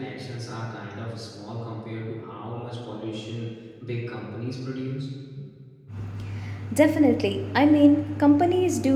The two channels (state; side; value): identical; both; correlation 1.00